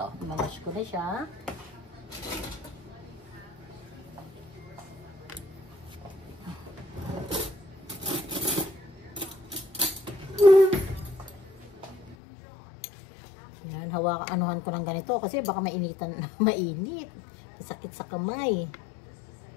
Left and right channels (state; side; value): drops out; right; at 12.2 s